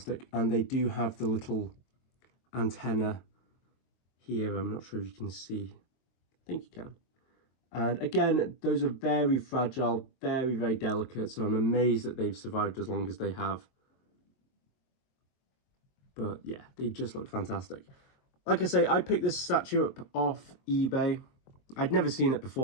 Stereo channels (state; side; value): late; right; 23 ms